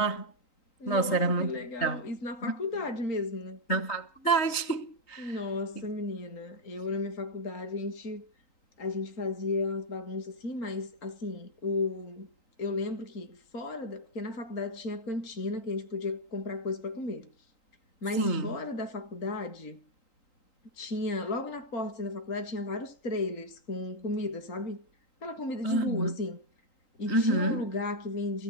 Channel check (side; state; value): right; late; 3.9 ms